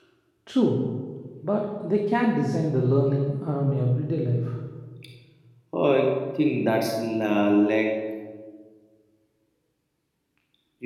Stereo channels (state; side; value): identical; both; correlation 1.00